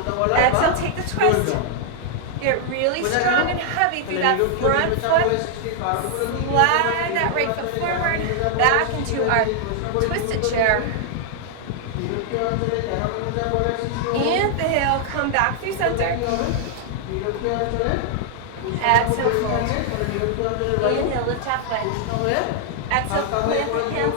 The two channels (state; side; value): different; both; correlation -0.01